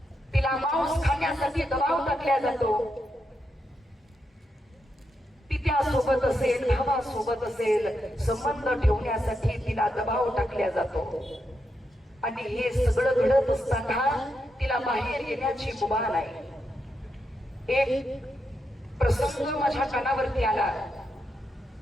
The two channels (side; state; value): both; normal; correlation 0.84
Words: तिला मांस खाण्यासाठी दबाव टाकला जातो. पित्यासोबत असेल, भावासोबत असेल, संबंध ठेवण्यासाठी तिला दबाव टाकला जातो. आणि हे सगळं घडत असताना तिला बाहेर येण्याची मुभा नाही. एक प्रसंग माझ्या कानावरती आला.